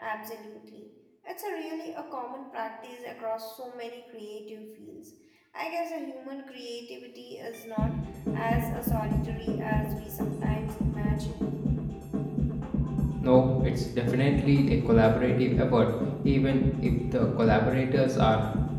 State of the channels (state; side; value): identical; both; correlation 1.00